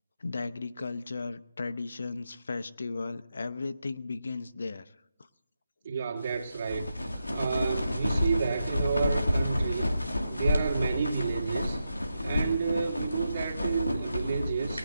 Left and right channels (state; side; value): inverted; both; correlation -0.86